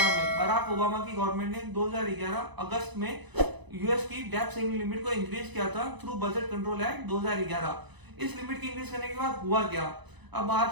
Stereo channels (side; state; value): left; late; 1.0 ms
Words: में, बराक ओबामा की गवर्नमेंट ने 2011 अगस्त में यूएस की डेट सीलिंग लिमिट को इंक्रीज किया था थ्रू बजट कंट्रोल एक्ट 2011। इस लिमिट की इंक्रीज करने के बाद हुआ क्या? अब